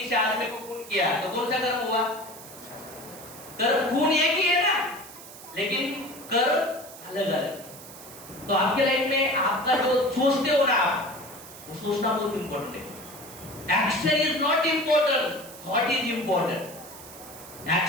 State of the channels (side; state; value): right; noise; hiss, 16 dB below the sound